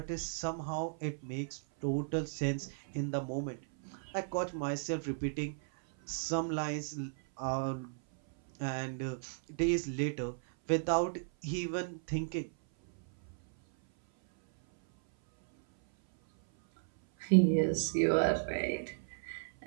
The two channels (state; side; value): silent; left; 55 dB below the other